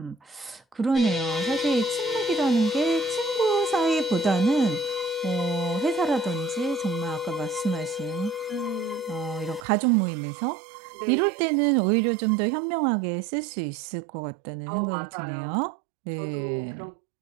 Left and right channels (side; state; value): left; drops out; at 9.7 s